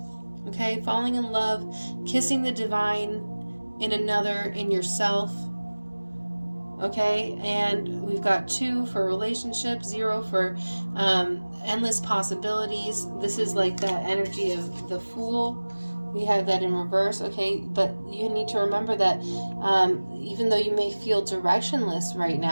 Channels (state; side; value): inverted; both; correlation -1.00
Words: okay? Falling in love, kissing the divine in another, in yourself, okay? And we've got 2 for relationships, 0 for endless possibilities. This is like that energy of the Fool. We have that in reverse, okay? But you need to remember that even though you may feel directionless right